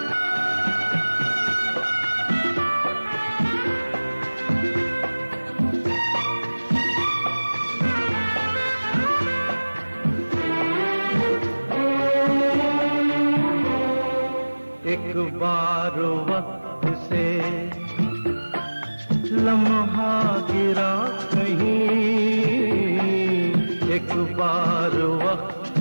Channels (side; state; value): both; inverted; correlation -1.00